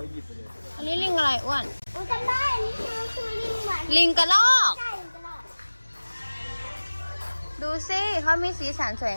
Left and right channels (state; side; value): inverted; both; correlation -1.00